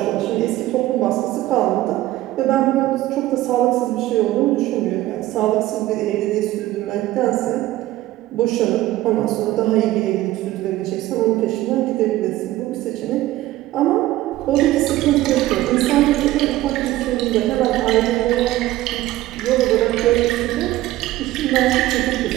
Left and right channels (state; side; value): quieter; left; 15.9 dB